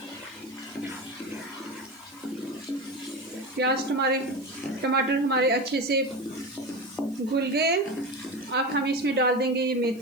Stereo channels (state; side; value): noise; right; hiss, 25 dB below the sound